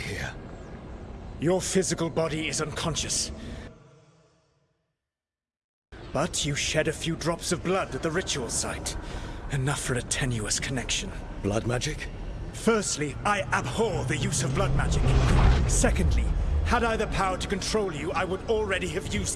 Your physical body is unconscious. But you shed a few drops of blood at the ritual site. Enough for a tenuous connection. Blood magic? Firstly, I abhor the use of blood magic. Secondly, had I the power to control you, I would already have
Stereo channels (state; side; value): identical; both; correlation 1.00